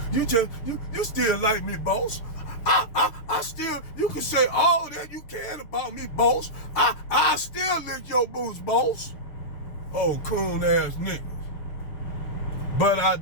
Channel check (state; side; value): late; right; 6.8 ms